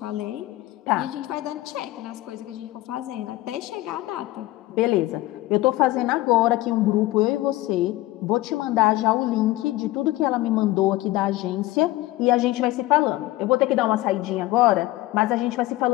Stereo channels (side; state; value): right; quieter; 17.7 dB